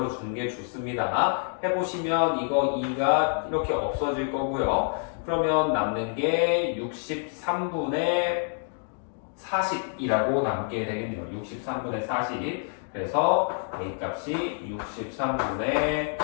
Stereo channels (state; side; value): silent; right; 57 dB below the other